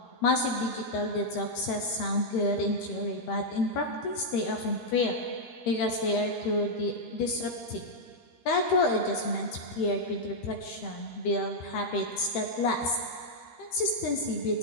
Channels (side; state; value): right; late; 13 ms